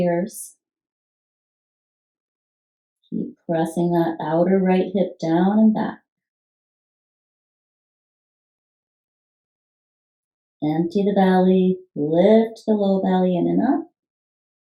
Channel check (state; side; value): identical; both; correlation 1.00